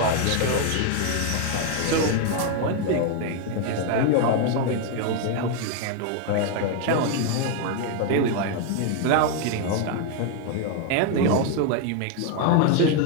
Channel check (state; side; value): different; both; correlation 0.01